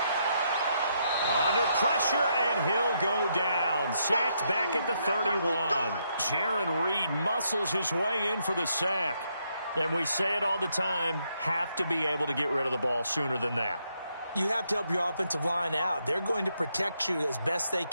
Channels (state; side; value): inverted; both; correlation -0.77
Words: Under pressure, and he'll go down. Sacked back at the 31. Jaron Reed muscles his way in for the sack. And we say it all the time, have to be able to get rid of the ball sooner than that. You have to help your offensive line out. They're going to protect you as best they